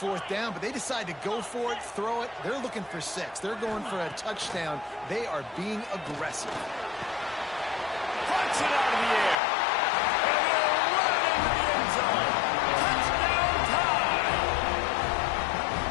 down, but they decide to go for it, throw it. They're looking for 6. They're going for a touchdown. They are being aggressive. Punch it out of the air. And they'll run into the end zone. Touchdown time.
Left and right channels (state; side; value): drops out; right; at 9.3 s